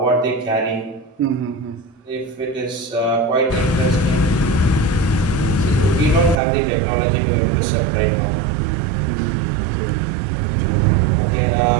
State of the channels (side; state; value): left; drops out; at 6.4 s